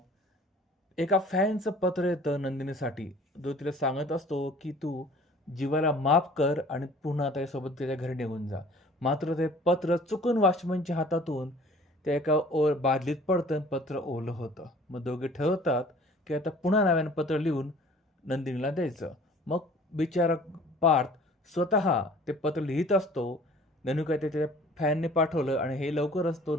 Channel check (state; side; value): normal; both; correlation 0.50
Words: एका फॅनचं पत्र येतं नंदिनीसाठी, जो तिला सांगत असतो की तू जीवाला माफ कर आणि पुन्हा त्याच्यासोबत त्याच्या घरी निघून जा. मात्र ते पत्र चुकून वॉचमनच्या हातातून त्या एका बादलीत पडतं, पत्र ओलं होतं. मग दोघे ठरवतात की आता पुन्हा नव्यानं पत्र लिहून नंदिनीला द्यायचं. मग बिचारा पार्थ स्वतः ते पत्र लिहित असतो. ननू काय ते त्याच्या फॅनने पाठवलं आणि हे लवकरच तो